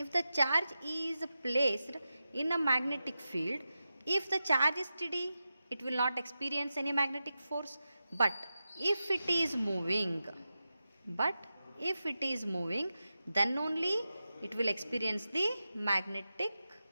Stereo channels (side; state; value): both; inverted; correlation -0.92